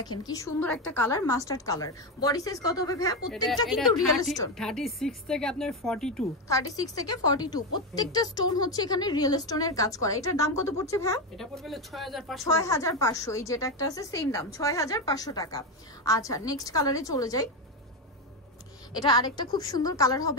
কি সুন্দর একটা colour, mustard colour. Body size কত হবে ভাইয়া? প্রত্যেকটা কিন্তু রিয়েল স্টোন, 36 থেকে আপনার 42, 36 থেকে 42 প্রত্যেকটা স্টোন হচ্ছে এখানে রিয়েল স্টোনের কাজ করা। এটার দাম কত পড়ছে ভাইয়া? এটা পড়বে 6500। 6500। এই যেটা একটা আছে সেম দাম 6500 টাকা। আচ্ছা নেক্সট কালারে চলে যাই। এটা আরেকটা খুব সুন্দর কালার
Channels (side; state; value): both; normal; correlation 0.11